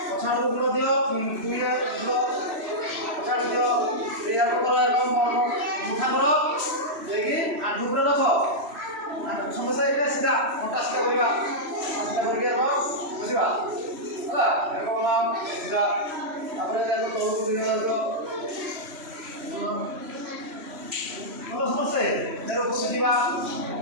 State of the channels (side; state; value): left; late; 3.0 ms